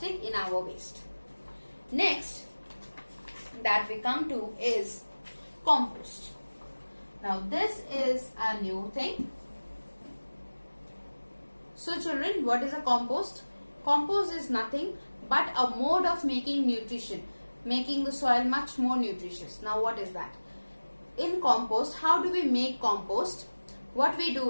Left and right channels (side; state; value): both; inverted; correlation -1.00